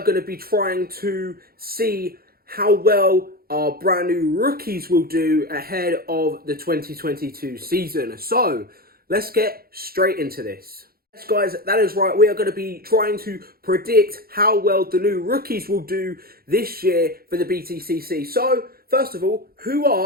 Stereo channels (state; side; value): late; left; 0.44 ms